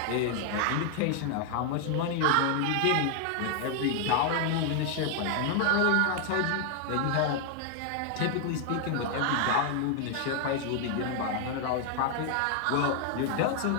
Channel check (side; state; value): both; different; correlation 0.00